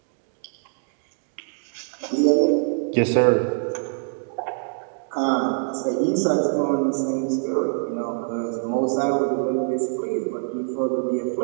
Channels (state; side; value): silent; left; digital silence